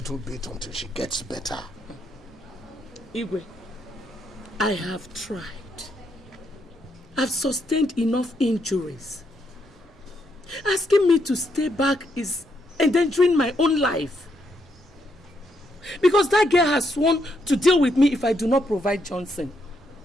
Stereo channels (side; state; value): both; normal; correlation 0.77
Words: bit until she gets better. Igwe, I have tried. I've sustained enough injuries. Asking me to stay back is endangering my own life. Because that girl has sworn to deal with me if I do not provide Johnson.